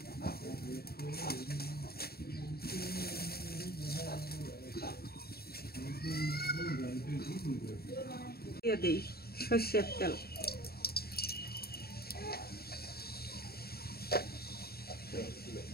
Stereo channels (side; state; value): right; late; 0.45 ms